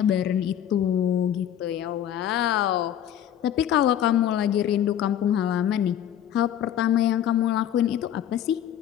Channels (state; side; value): quieter; right; 10.4 dB